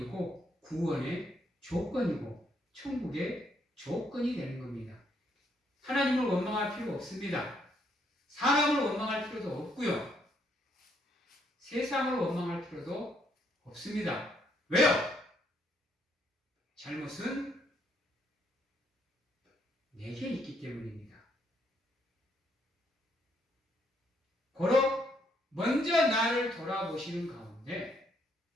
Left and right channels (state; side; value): normal; both; correlation 0.72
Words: 구원의 조건이고 천국의 조건이 되는 겁니다. 하나님을 원망할 필요 없습니다. 사람을 원망할 필요도 없고요. 세상을 원망할 필요도 없습니다. 왜요? 잘못은 내게 있기 때문입니다. 고로 먼저 나를 돌아보시는 가운데